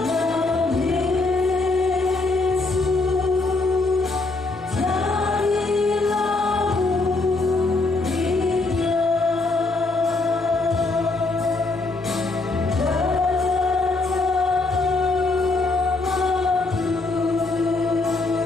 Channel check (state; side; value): quieter; right; 3.4 dB